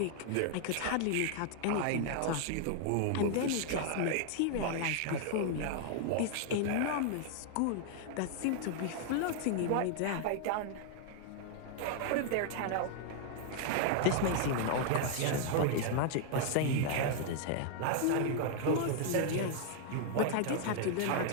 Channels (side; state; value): both; different; correlation -0.01